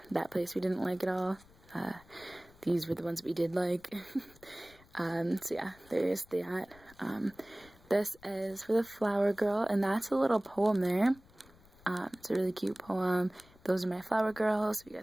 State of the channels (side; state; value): left; noise; rumble, 26 dB below the sound